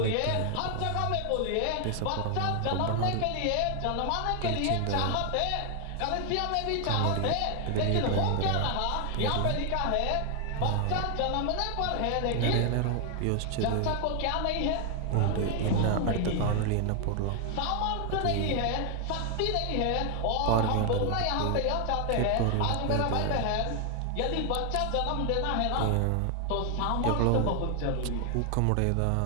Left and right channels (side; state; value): both; different; correlation 0.00